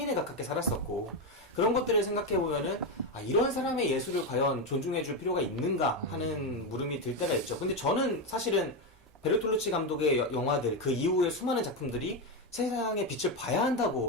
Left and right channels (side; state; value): both; normal; correlation 0.09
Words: 가깝게 살았었고, 그런 것들을 생각해 보면은 아, 이런 사람의 예술을 과연 존중해 줄 필요가 있는가 하는 물음이 들 때가 있죠. 근데 저는 사실은 베르톨루치 감독의 영화들, 그 이후의 수많은 작품들이 세상의 빛을 봐야